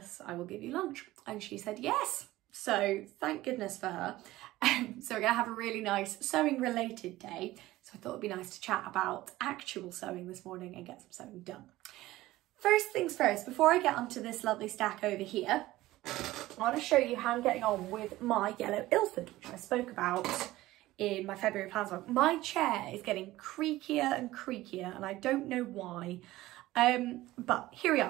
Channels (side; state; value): left; quieter; 17.0 dB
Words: I will give you lunch. And she said, yes. So thank goodness for her. So we're gonna have a really nice sewing related day. So I thought it'd be nice to chat about actual sewing this morning and get some sewing done. First things first, before I get onto this lovely stack over here, I want to show you how I'm getting on with my yellow Ilford, which I spoke about in my February plans vlog. My chair is getting creakier and creakier and I don't know why, but here we